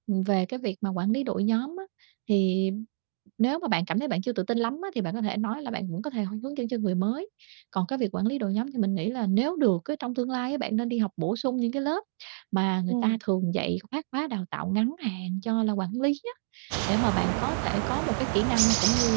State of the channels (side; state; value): left; silent; digital silence